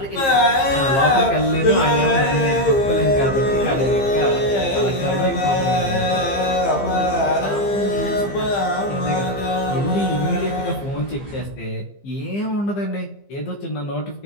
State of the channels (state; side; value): late; right; 15 ms